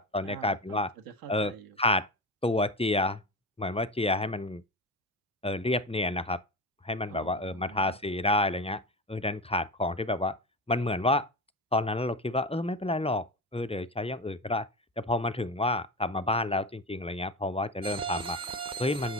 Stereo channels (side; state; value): both; normal; correlation 0.23